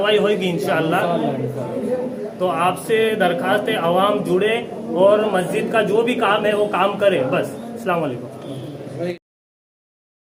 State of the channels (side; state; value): both; identical; correlation 1.00